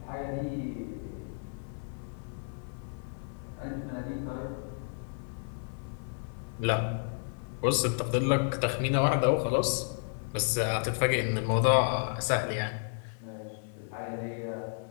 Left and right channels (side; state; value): right; silent; 56 dB below the other